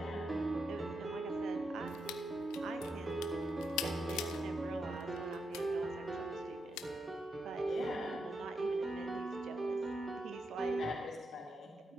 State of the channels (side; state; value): both; normal; correlation 0.83